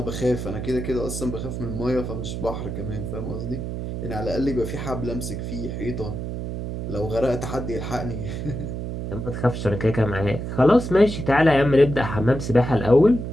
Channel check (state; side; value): noise; right; hum, 5 dB below the sound